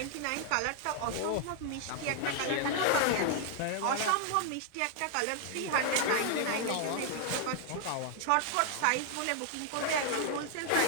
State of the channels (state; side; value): different; both; correlation 0.00